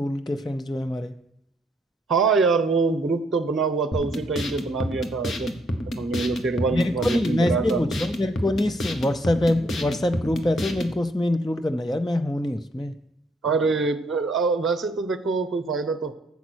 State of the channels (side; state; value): both; normal; correlation 0.69